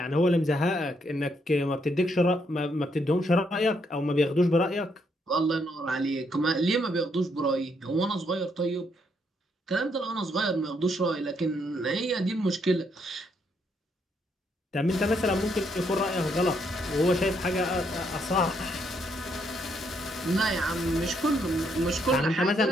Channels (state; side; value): normal; both; correlation 0.74